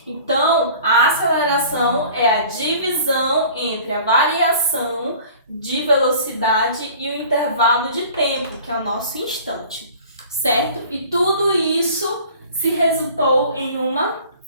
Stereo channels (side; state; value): both; inverted; correlation -0.46